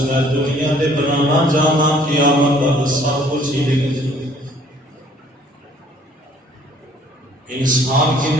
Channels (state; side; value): normal; both; correlation 0.58